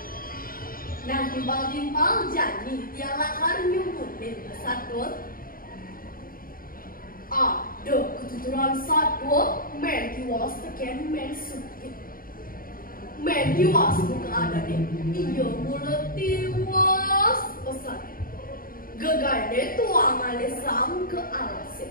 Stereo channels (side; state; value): right; late; 0.41 ms